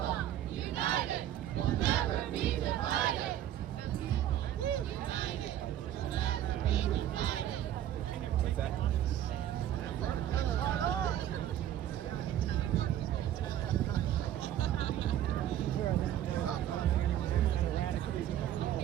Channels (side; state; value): left; quieter; 11.6 dB